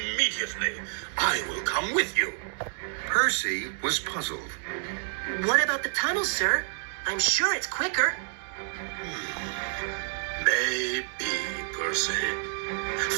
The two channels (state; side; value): silent; left; 59 dB below the other